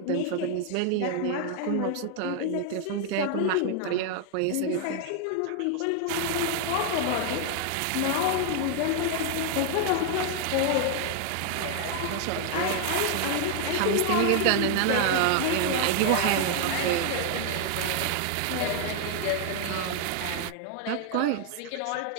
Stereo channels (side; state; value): both; different; correlation 0.00